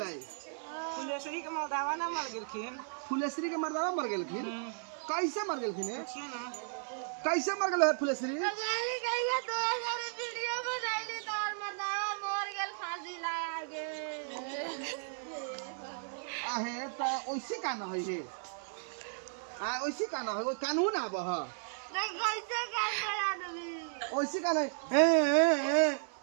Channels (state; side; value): silent; left; 55 dB below the other